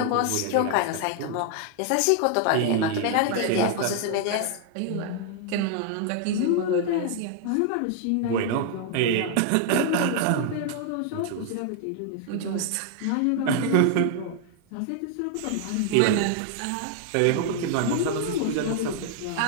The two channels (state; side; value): different; both; correlation 0.00